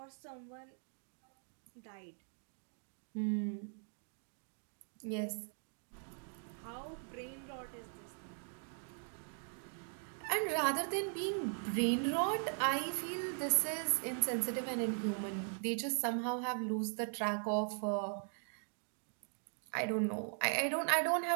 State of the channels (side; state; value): left; silent; 51 dB below the other